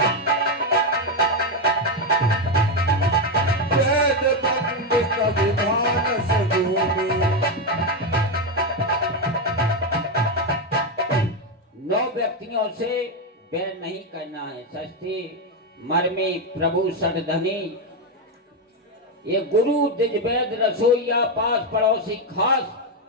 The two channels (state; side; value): normal; both; correlation 0.07